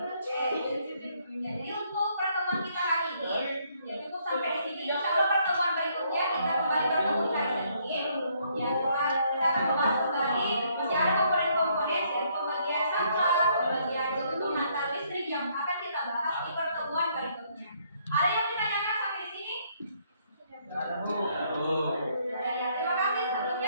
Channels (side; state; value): both; inverted; correlation -0.69